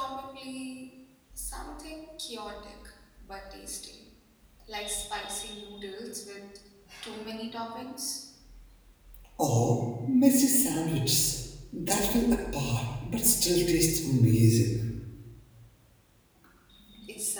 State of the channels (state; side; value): identical; both; correlation 1.00